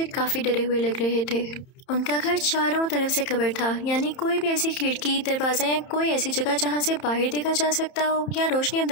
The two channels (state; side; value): late; right; 30 ms